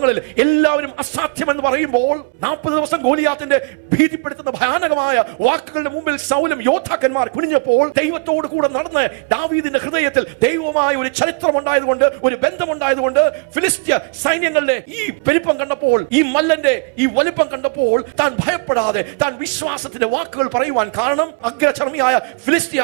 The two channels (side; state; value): left; quieter; 35.1 dB